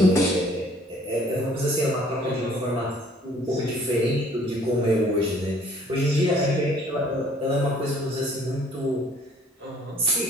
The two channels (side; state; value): both; normal; correlation 0.57